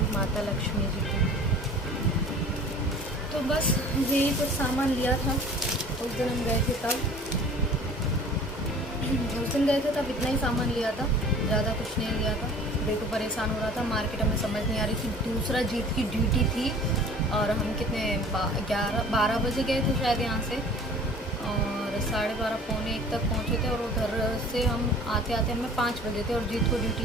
माता लक्ष्मी जी की। तो बस यही कुछ सामान लिया था। उस दिन हम गए थे तब इतना ही सामान लिया था, ज़्यादा कुछ नहीं लिया था। देखो परेशान हो रहा था, मार्केट हमें समझ नहीं आ रही थी। दूसरा जीत की ड्यूटी थी, और हम कितने 12 बजे गए थे शायद यहाँ से, और 12:30 पौने 1 तक पहुँचे थे। और उधर से हम आते हमें 5 बजे थे, और जीत को ड्यूटी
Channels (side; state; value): both; normal; correlation 0.46